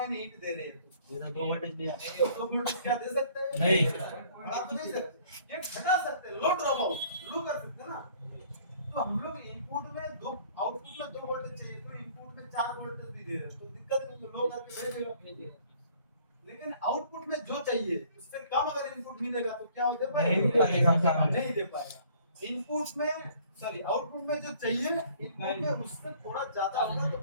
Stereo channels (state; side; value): inverted; both; correlation -0.57